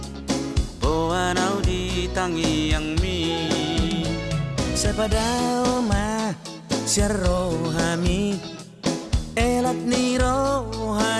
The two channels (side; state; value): both; identical; correlation 1.00